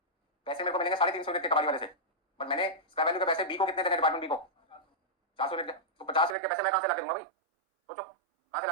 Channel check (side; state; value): left; drops out; at 6.4 s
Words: पैसे मेरे को मिलेंगे 350 यूनिट के कबाड़ी वाले से, बट मैंने स्क्रैप वैल्यू के पैसे बी को कितने देने, डिपार्टमेंट बी को 400 यूनिट के, तो 50 यूनिट के पैसे मैं कहां से लाके दूंगा भाई, सोचो कहां से